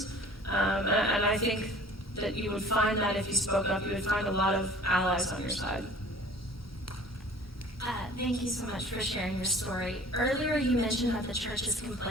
and I think that you would find that if you spoke up, you would find a lot of allies on your side. Thank you so much for sharing your story. Earlier you mentioned that the church is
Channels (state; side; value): normal; both; correlation 0.48